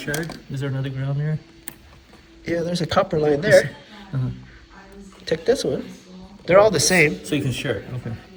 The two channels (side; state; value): both; identical; correlation 1.00